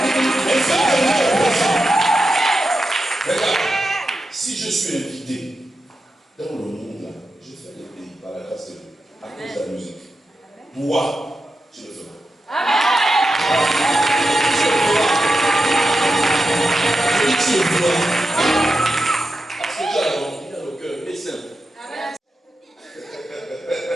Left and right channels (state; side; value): normal; both; correlation 0.89